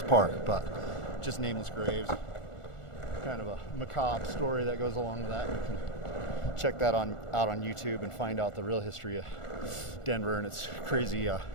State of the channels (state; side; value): late; right; 1.4 ms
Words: park, but just nameless graves. Kind of a macabre story that goes along with that. You can check that out on YouTube and find out the real history of Denver and its crazy